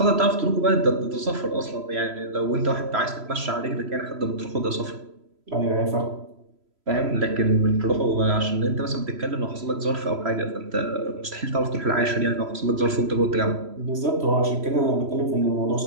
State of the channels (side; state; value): left; late; 3.0 ms